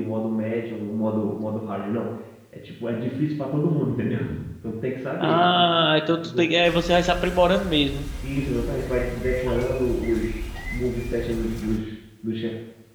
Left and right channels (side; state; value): both; identical; correlation 1.00